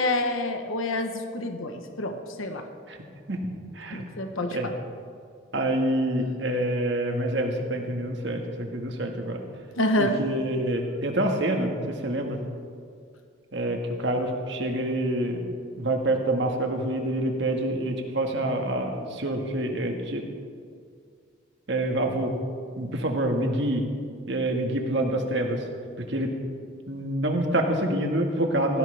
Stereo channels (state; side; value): normal; both; correlation 0.31